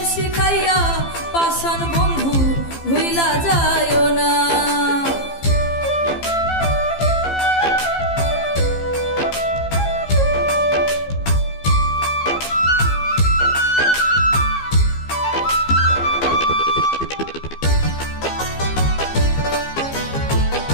শিখাইয়া পাষাণ বন্ধু ভুইলা যায়ও না।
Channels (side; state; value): right; late; 15 ms